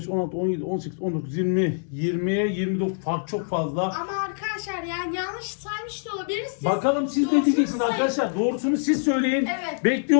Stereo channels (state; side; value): silent; right; 62 dB below the other